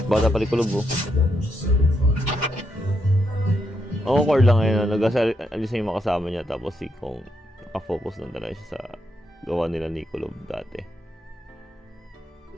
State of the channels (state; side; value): normal; both; correlation 0.80